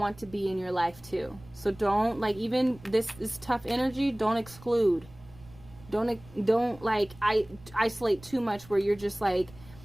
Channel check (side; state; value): right; noise; rumble, 22 dB below the sound